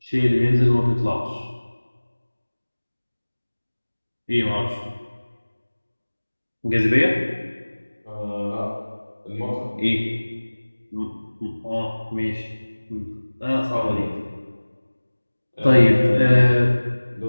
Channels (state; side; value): inverted; both; correlation -1.00